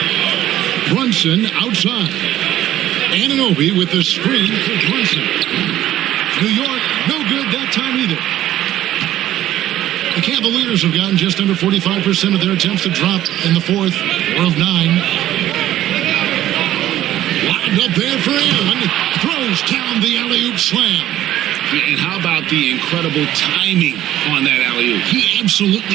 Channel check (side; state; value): left; quieter; 13.3 dB